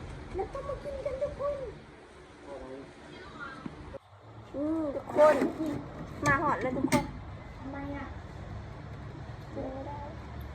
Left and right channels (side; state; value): both; identical; correlation 1.00